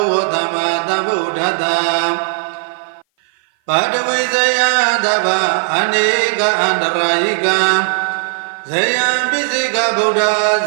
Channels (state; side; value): silent; left; 57 dB below the other